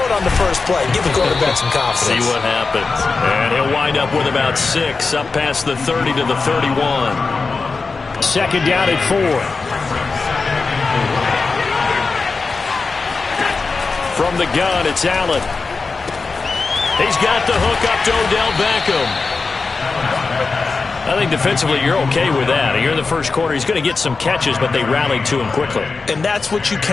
it on the first play. Give the quarterback some confidence. See what happens. And he'll wind up with about 6 up past the 30 to the 31. Second down at 4. From the gun, it's Allen. He's got the hook up to Odell Beckham. I think defensively you're okay with that. You're in the first quarter. He's going to get some catches, but they rallied to him quickly. And that's what you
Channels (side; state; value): right; quieter; 4.3 dB